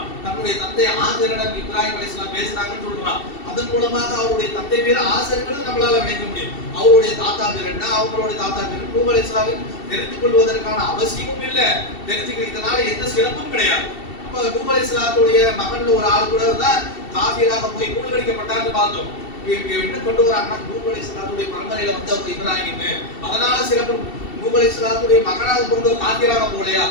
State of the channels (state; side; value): late; right; 2.7 ms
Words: தன்னுடைய தந்தை ஆசரிடம் இப்ராஹிம் அலைஹிஸ்ஸலாம் பேசினாங்கன்னு சொல்றான். அதன் மூலமாக அவருடைய தந்தை பேர் ஆசர்ங்கிறது நம்மளால நினைக்க முடியும். அவருடைய தாத்தா பேர் என்ன, அவங்களுடைய தாத்தா பேர் நூஹ் அலைஹிஸ்ஸலாம் தெரிந்து கொள்வதற்கான அவசியமும் இல்லை, தெரிஞ்சுக்கிறதுனால எந்த சிறப்பும் கிடையாது. அப்ப நூஹ் அலைஹிஸ்ஸலாத்துடைய மகன்ல ஒரு ஆள் கூட தான் காஃபிராக போய் மூழ்கடிக்கப்பட்டார்னு பார்த்தோம். என்ன கொண்டு வராங்கன்னா நூஹ் அலைஹிஸ்ஸலாத்துடைய பரம்பரையில வந்து அவர் இப்ராஹிம், அதனால சிறப்பு. நூஹ் அலைஹிஸ்ஸலாத்துடைய மகனாக பிறந்த காஃபிராக போலையா,